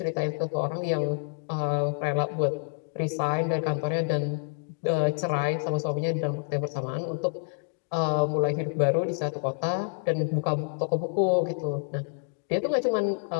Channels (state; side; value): silent; right; digital silence